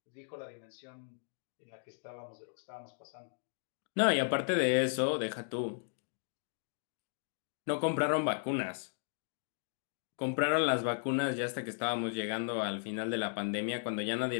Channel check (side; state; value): right; silent; digital silence